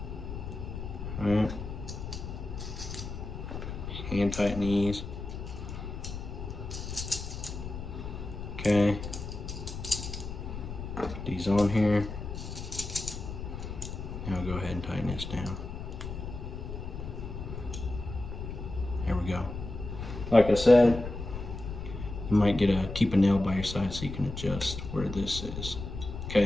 All right. Hand tighten these. Okay. Put these on here. Now go ahead and tighten this down. There we go. Like I said, you might keep a nail by your side so you can adjust where this is.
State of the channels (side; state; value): left; noise; rumble, 7 dB below the sound